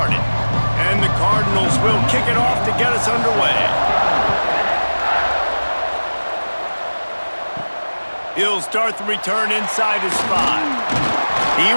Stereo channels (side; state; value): both; inverted; correlation -1.00